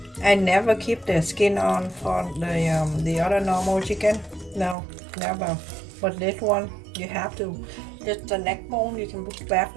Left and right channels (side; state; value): left; drops out; at 4.8 s